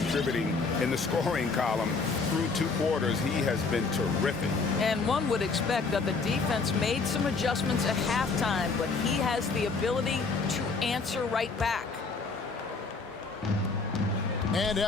in the scoring column through 2 quarters? He has been terrific. And one would expect that the defense made some adjustments at halftime, but he has the ability to answer right back. And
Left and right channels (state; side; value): quieter; right; 4.3 dB